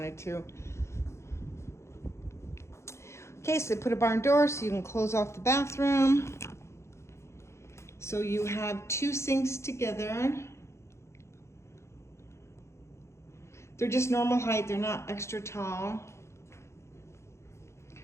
to. Okay, so they put a barn door so you can close off the bathroom. So you have two sinks together. They're just normal height, they're not extra tall.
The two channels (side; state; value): right; late; 0.13 ms